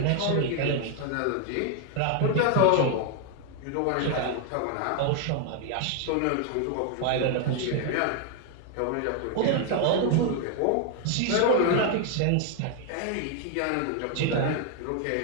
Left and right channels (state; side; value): different; both; correlation 0.00